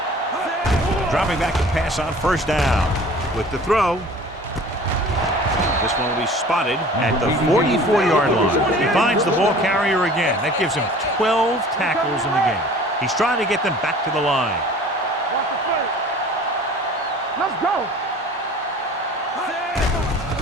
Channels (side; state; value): both; normal; correlation 0.46